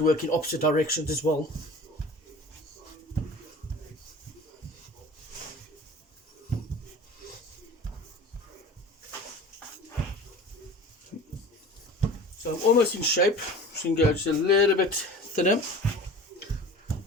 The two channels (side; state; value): both; normal; correlation 0.39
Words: work in opposite directions as well. So I'm almost in shape, so you can go just a little bit thinner.